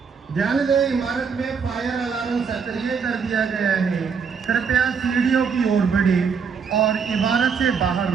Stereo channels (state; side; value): quieter; left; 6.1 dB